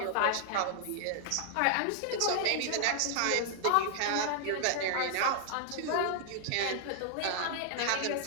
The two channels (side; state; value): both; different; correlation -0.01